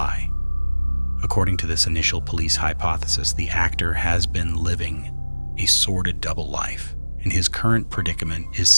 According to this initial police hypothesis, the actor has been living a sordid double life, and his current predicament is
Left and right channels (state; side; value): inverted; both; correlation -1.00